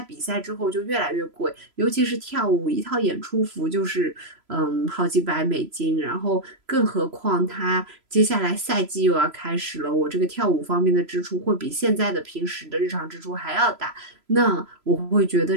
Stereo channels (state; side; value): late; left; 3.0 ms